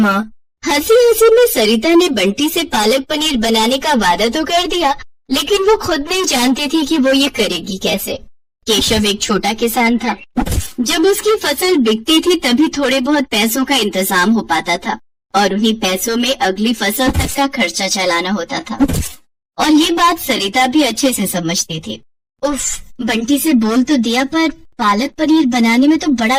हंसी हंसी में सरिता ने बंटी से पालक पनीर बनाने का वादा तो कर दिया, लेकिन वो खुद नहीं जानती थी कि वो ये करेगी कैसे। केशव एक छोटा किसान था। जब उसकी फसल बिकती थी तभी थोड़े बहुत पैसों का इंतजाम हो पाता था और उन्हीं पैसों में अगली फसल तक का खर्चा चलाना होता था। और ये बात सरिता भी अच्छे से समझती थी। उफ, बंटी से बोल तो दिया, पर पालक पनीर बनाने में तो बड़ा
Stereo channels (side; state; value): both; identical; correlation 1.00